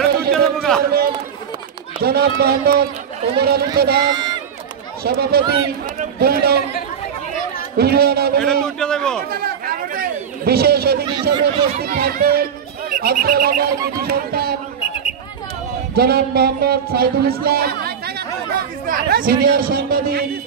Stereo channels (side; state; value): left; quieter; 7.7 dB